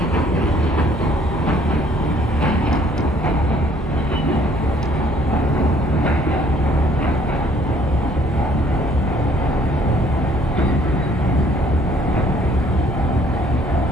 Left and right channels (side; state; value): both; normal; correlation 0.61